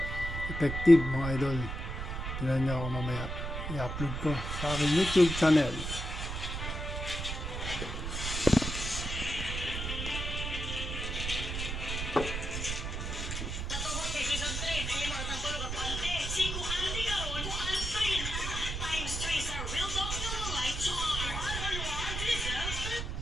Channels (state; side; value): noise; right; rumble, 4 dB below the sound